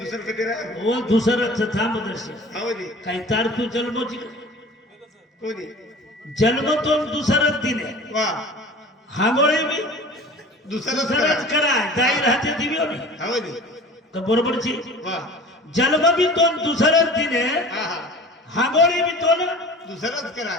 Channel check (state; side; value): normal; both; correlation 0.41